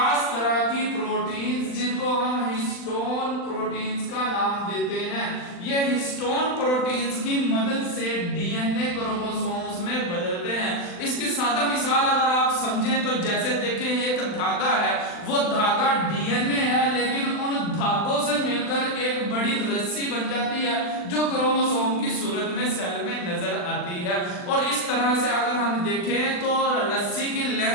तरह की प्रोटीन्स जिनको हम हिस्टोन प्रोटीन्स का नाम देते हैं, ये हिस्टोन प्रोटीन्स की मदद से डीएनए क्रोमोसोम्स में बदलते हैं। इसकी सादा मिसाल अगर आप समझें तो जैसे देखें एक धागा है, वो धागा डीएनए है लेकिन उन धागों से मिलकर एक बड़ी रस्सी बन जाती है जो क्रोमोसोम की सूरत में सेल में नजर आती है। और इस तरह से अगर हम देखें तो रस्सी की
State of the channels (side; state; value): right; late; 39 ms